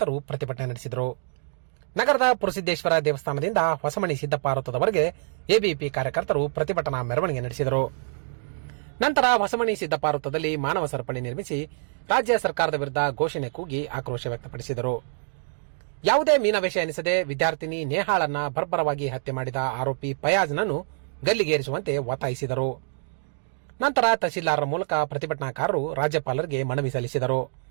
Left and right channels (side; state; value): left; silent; digital silence